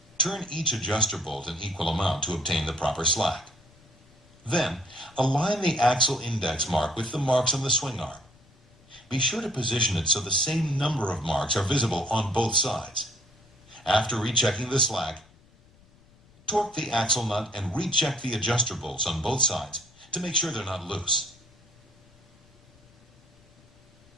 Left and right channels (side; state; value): left; noise; rumble, 28 dB below the sound